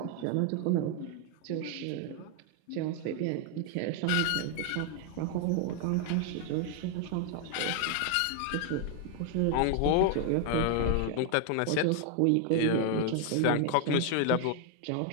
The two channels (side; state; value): both; different; correlation 0.00